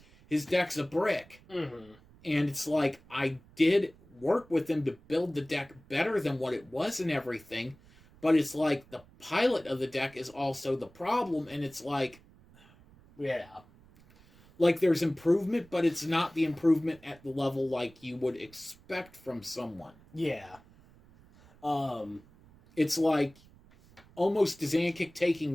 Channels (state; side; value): noise; right; rumble, 26 dB below the sound